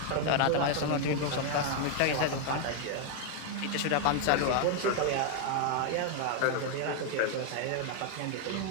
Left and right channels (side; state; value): both; different; correlation 0.00